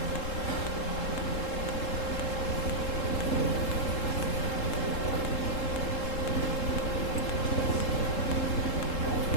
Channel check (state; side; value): late; right; 3.7 ms